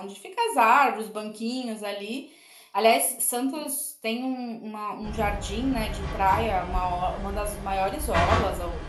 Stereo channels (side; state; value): both; identical; correlation 1.00